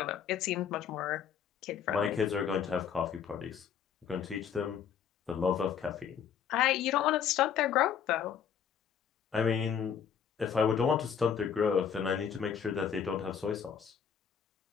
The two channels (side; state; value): right; quieter; 7.8 dB